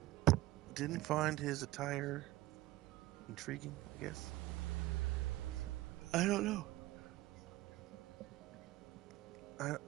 didn't find his attire intriguing, I guess. I don't know.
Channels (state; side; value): quieter; left; 17.6 dB